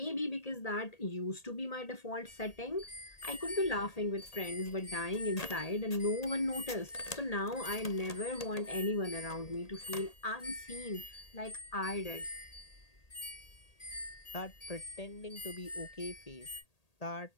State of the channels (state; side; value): late; right; 1.8 ms